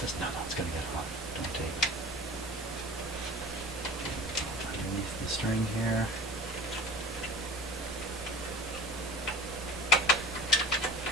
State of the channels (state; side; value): normal; both; correlation 0.39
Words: No, it's going to get hot. Don't tape it. Underneath the string here.